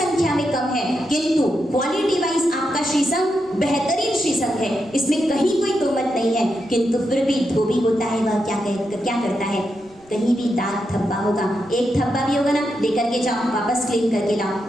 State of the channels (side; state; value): right; noise; rumble, 29 dB below the sound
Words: में कम है, किंतु क्वालिटी वाइज आपका श्री संघ बेहतरीन श्री संघ है, इसमें कहीं कोई तोमत नहीं है। किंतु फिर भी धोबी होता है, वह क्या करता है? कहीं भी दाग धब्बा होगा, एक धब्बा भी होगा ना, लेकर के जाओ, वापस क्लीन करके लाओ।